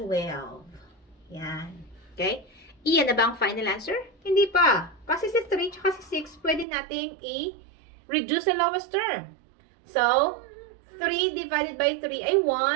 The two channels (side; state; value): left; drops out; at 6.7 s